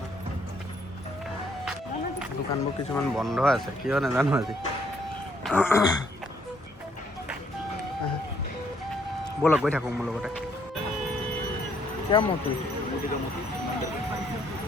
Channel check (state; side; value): normal; both; correlation 0.68